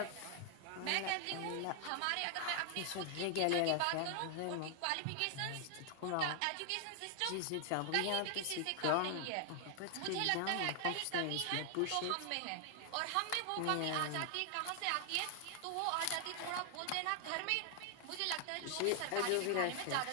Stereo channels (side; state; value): both; different; correlation 0.00